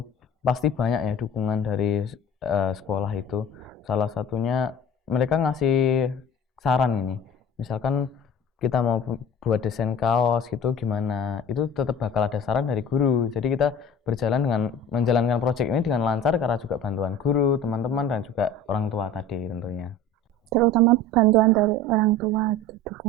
Pasti banyak ya dukungan dari sekolah itu. Salah satunya mereka ngasih saran ini. Misalkan kita mau buat desain kaos gitu gimana, itu tetap bakal ada saran dari guru. Jadi kita berjalan dengan menjalankan proyek ini dengan lancar karena juga bantuan guru, teman-teman, dan juga orang tua tadi tentunya. Terutama bantuan dari orang tua, gitu,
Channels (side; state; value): both; normal; correlation 0.41